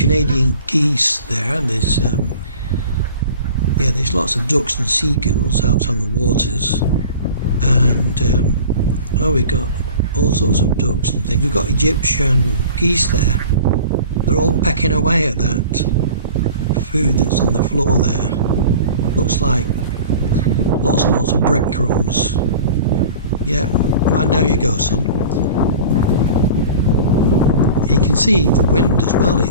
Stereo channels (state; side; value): inverted; both; correlation -0.41